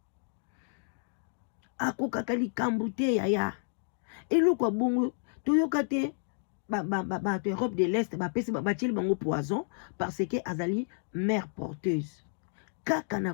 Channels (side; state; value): right; silent; digital silence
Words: Akokaka likambo te yaya. Eloko bongo toyoka te bato Europe de l'Est bapesi batieli bango poison parce que azali mère porteuse. Kaka na